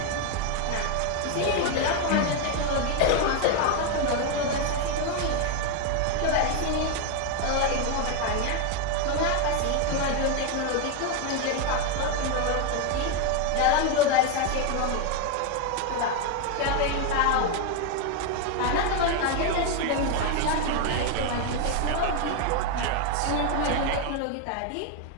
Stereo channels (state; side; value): different; both; correlation 0.01